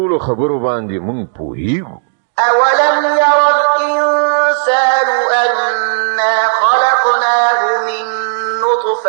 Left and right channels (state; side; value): silent; left; digital silence